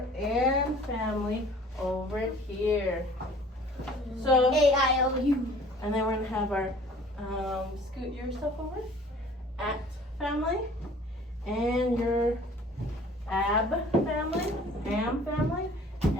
and family over here. So, A-I-O-U. and then we're gonna have our, scoot your stuff over, at family, and your ab family, am family,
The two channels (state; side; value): normal; both; correlation 0.50